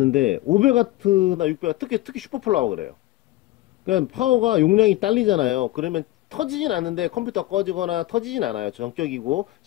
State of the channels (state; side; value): quieter; right; 17.0 dB